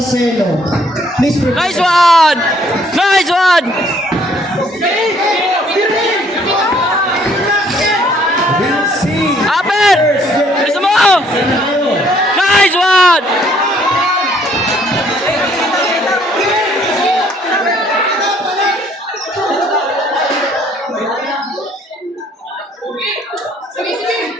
Please prepare. Nice one. Nice one. Aper. Bisa mo. Nice one.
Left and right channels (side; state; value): both; normal; correlation 0.63